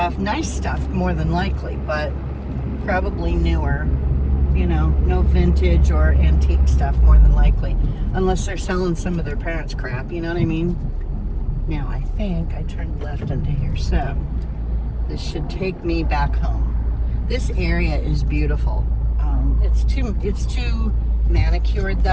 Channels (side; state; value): both; identical; correlation 1.00